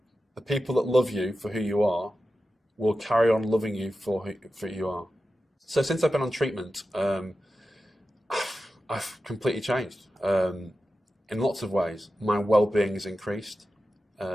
The people that love you for who you are will carry on loving you for who you are. So since I've been on treatment, I've completely changed in lots of ways. My well-being has increased.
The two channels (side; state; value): both; normal; correlation 0.92